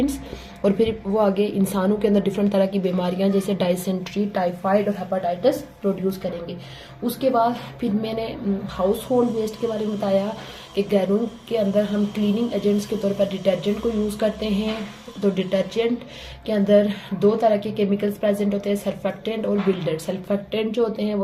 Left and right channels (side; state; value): both; identical; correlation 1.00